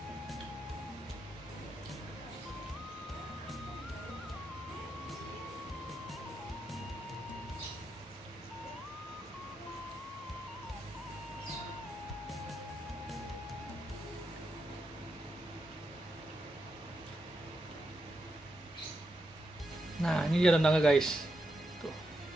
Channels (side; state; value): both; normal; correlation 0.84